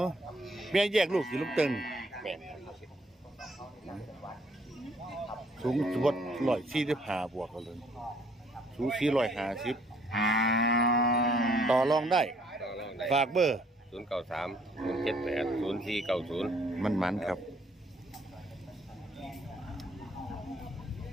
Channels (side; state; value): both; normal; correlation 0.64